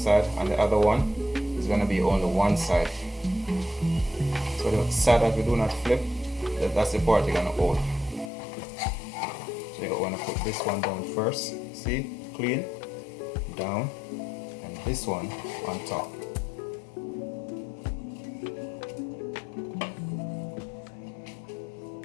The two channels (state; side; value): drops out; right; at 8.3 s